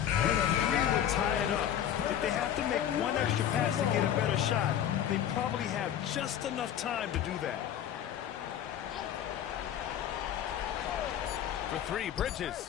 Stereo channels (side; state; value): right; quieter; 10.1 dB